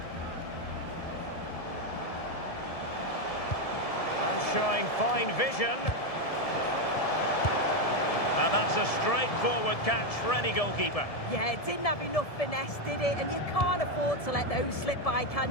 And showing fine vision. And that's a straightforward catch for any goalkeeper. Yeah, it didn't have enough finesse, did it? And you can't afford to let those slip by,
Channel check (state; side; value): late; right; 1.7 ms